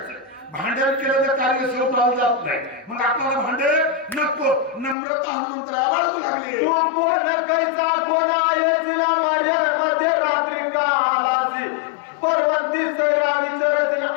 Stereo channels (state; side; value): drops out; right; at 5.0 s